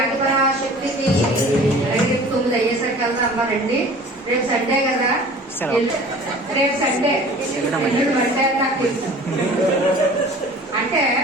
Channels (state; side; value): normal; both; correlation 0.45